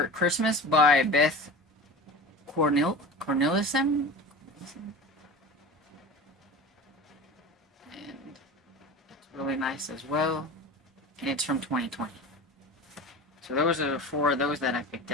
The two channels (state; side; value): normal; both; correlation 0.33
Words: Christmas by Beth Cornelissen. And it's really nice as well. And it's from 2020. So those are 4 of those that I picked